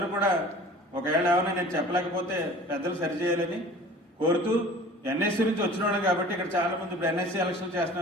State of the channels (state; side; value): normal; both; correlation 0.44